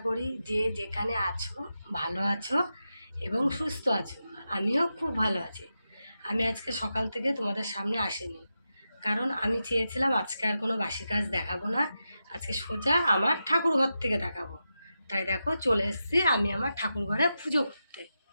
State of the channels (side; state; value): both; inverted; correlation -0.89